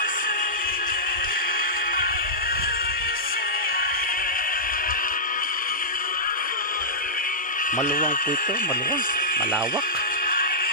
Maluwang po ito, maluwang, malawak.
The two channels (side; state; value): both; normal; correlation -0.14